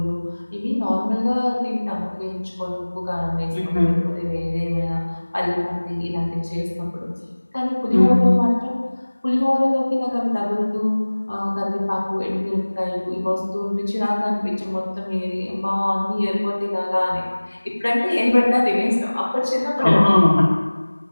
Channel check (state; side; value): inverted; both; correlation -1.00